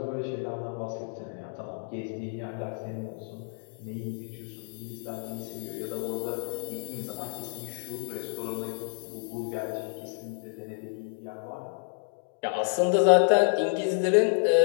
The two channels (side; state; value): right; silent; digital silence